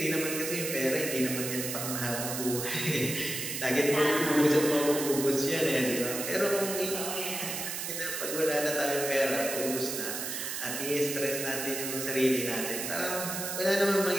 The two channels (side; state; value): right; noise; hiss, 4 dB below the sound